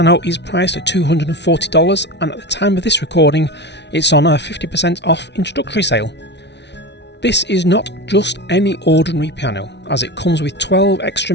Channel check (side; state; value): right; late; 0.50 ms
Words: is priced at $240, and at the time of this recording it's on a 50% off introductory sale. This is not just any ordinary piano, as it comes with 12 extra